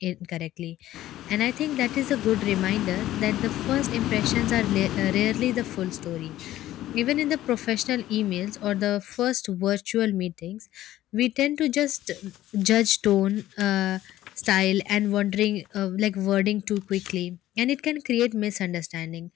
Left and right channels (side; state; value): right; quieter; 14.2 dB